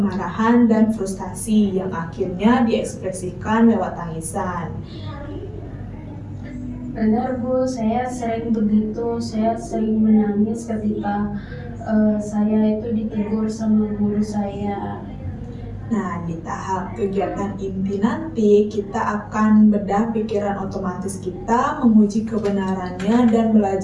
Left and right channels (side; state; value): both; identical; correlation 1.00